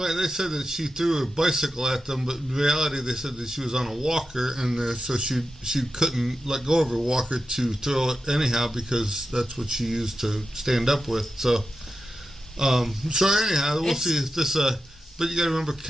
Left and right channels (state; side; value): normal; both; correlation 0.91